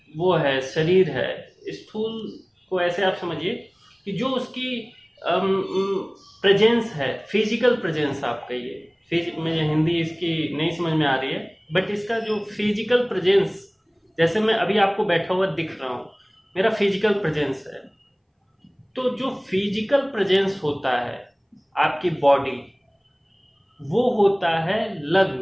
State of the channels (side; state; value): both; identical; correlation 1.00